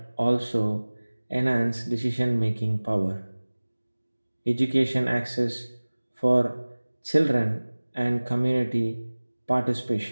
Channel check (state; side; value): inverted; both; correlation -1.00